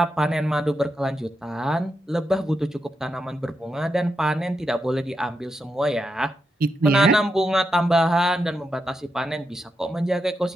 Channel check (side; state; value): both; normal; correlation 0.85